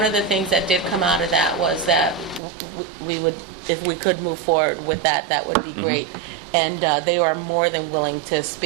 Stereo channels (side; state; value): left; drops out; at 2.4 s